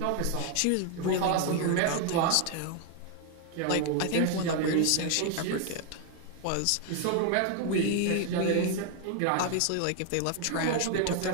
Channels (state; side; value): different; both; correlation 0.00